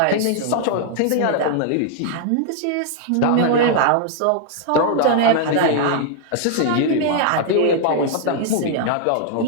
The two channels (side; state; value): both; different; correlation 0.00